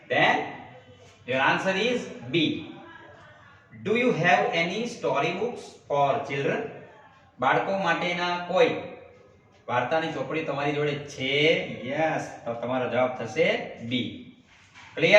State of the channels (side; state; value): both; identical; correlation 1.00